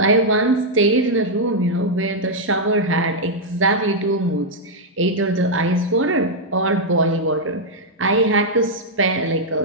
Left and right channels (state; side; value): normal; both; correlation -0.03